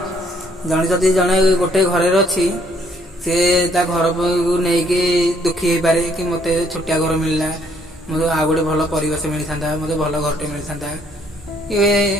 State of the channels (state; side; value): normal; both; correlation 0.66